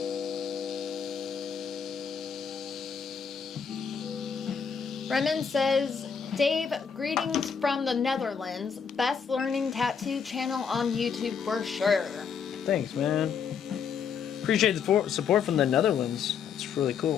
Remen says, Dave, greetings from the Netherlands. Best learning tattoo channel on YouTube for sure. Thanks, man. Appreciate the support from the Netherlands. It's really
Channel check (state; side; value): quieter; right; 6.7 dB